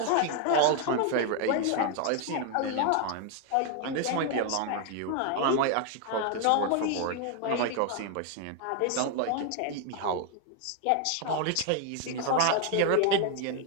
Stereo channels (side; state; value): both; different; correlation 0.01